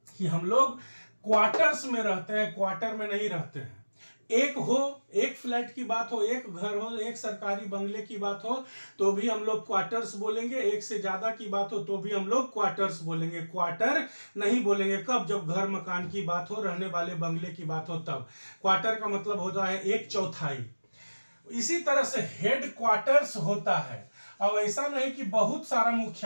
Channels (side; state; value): both; inverted; correlation -1.00